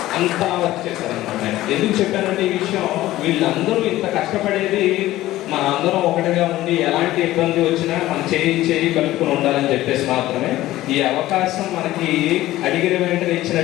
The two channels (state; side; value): quieter; right; 15.7 dB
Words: అంతా వర్క్ చేశారనమాట. ఎందుకు చెప్పానంటే ఈ విషయం, వీళ్ళందరూ ఇంత కష్టపడేది మన అందరం ఒకటిగా ఉండి ఎలాంటి ఇబ్బంది వచ్చినా మనం చేయి కలుపుకొని ఉండాలని చెప్పేసి మాత్రమే. ఈ అవకాశం మనకి అడిగిన వెంటనే